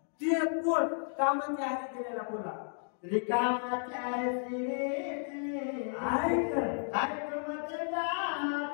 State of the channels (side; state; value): right; silent; digital silence